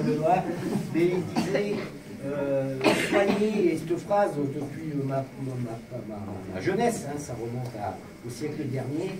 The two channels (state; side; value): identical; both; correlation 1.00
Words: là, mais il disait soyez, et cette phrase depuis ma jeunesse, ça remonte au siècle dernier,